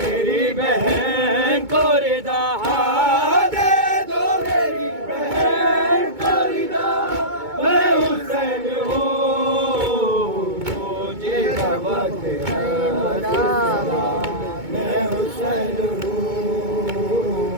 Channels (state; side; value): late; left; 2.2 ms